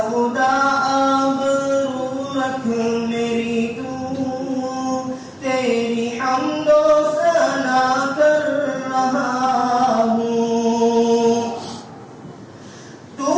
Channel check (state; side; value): identical; both; correlation 1.00